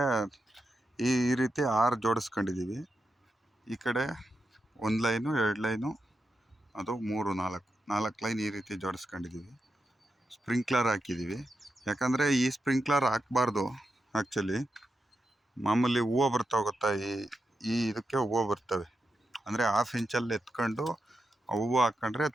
ಈ ರೀತಿ 6 ಜೋಡಿಸ್ಕೊಂಡಿದ್ದೀವಿ. ಈ ಕಡೆ 1 ಲೈನು 2 ಲೈನು, ಅದು 3 4 ಲೈನ್ ಈ ರೀತಿ ಜೋಡಿಸ್ಕೊಂಡಿದ್ದೀವಿ. ಸ್ಪ್ರಿಂಕ್ಲರ್ ಹಾಕಿದ್ದೀವಿ. ಯಾಕಂದರೆ ಈ ಸ್ಪ್ರಿಂಕ್ಲರ್ ಹಾಕಬಾರ್ದು. ಆ್ಯಕ್ಚುಲಿ ಮಾಮೂಲಿ ಹೂವು ಬರ್ತಾವೆ ಗೊತ್ತಾ, ಈ ಇದಕ್ಕೆ ಹೂವು ಬರ್ತವೆ. ಅಂದರೆ 1/2 ಇಂಚಲ್ಲಿ ಎತ್ಕೊಂಡು ಹೂವು ಹಾಕ್ಕೊಂಡ್ರೆ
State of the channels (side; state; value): both; normal; correlation 0.87